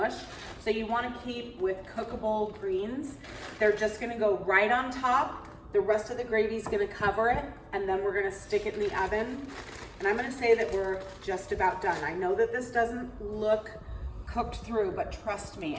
So you wanna keep with cookable greens. They're just gonna go right on top. The rest of the gravy is gonna cover it, and then we're gonna stick it in the oven. And I'm gonna say that we're just about done. I know that this doesn't look cooked through, but trust me,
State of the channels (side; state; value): both; identical; correlation 1.00